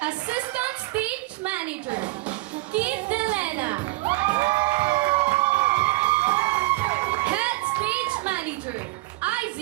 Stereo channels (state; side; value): quieter; left; 20.7 dB